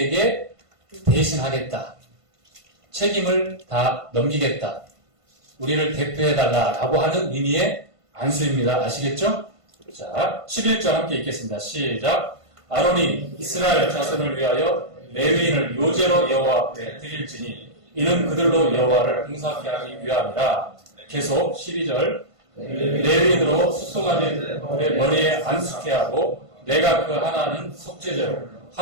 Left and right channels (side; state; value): left; late; 1.5 ms